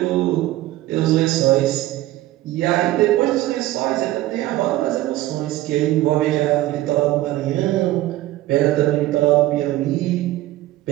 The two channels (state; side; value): quieter; left; 16.1 dB